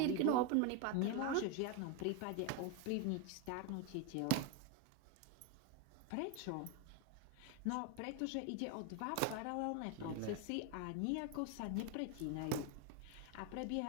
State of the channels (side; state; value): both; different; correlation 0.02